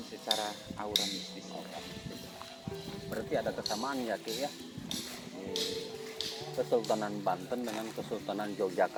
secara aura mistis. Berarti ada kesamaan ya Ki ya? Kesultanan Banten dengan Kesultanan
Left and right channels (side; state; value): both; identical; correlation 1.00